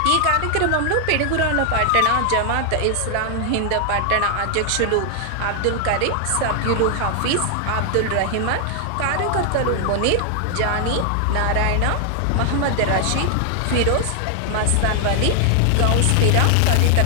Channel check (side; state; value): both; different; correlation 0.00